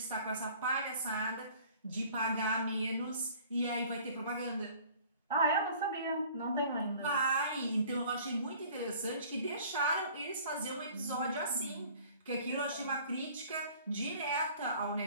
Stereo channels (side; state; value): both; inverted; correlation -0.51